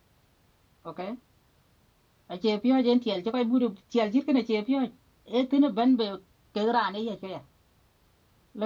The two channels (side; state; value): both; identical; correlation 1.00